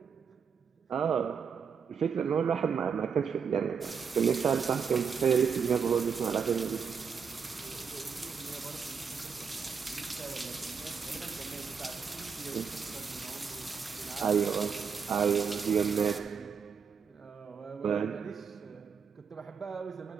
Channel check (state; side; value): quieter; left; 6.3 dB